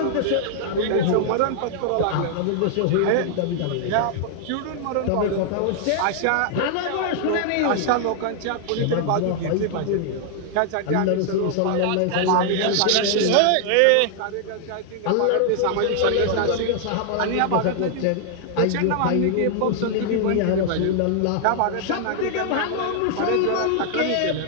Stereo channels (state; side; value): different; both; correlation 0.00